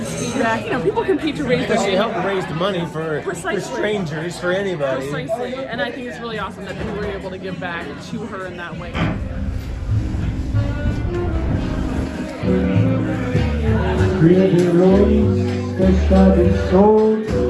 Speed Rack. You know, people compete to raise Because money. she helped raise the money for strangers, for anybody. Precisely, and I think it's really awesome that we were able to give back to her in that way.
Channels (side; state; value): both; identical; correlation 1.00